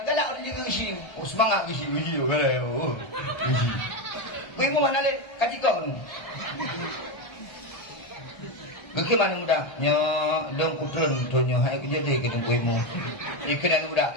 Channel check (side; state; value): right; late; 1.3 ms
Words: galak orang juga gesi semangat gesi tu kalau gesi imu mana le katika tu Geki mana muda? Nya dong kutun tu nya hai kerja dia kita kuimu. Ni kena muda.